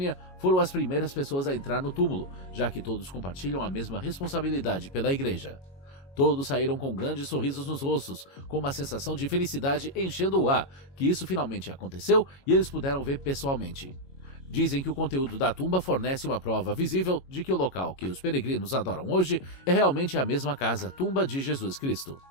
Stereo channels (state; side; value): late; right; 22 ms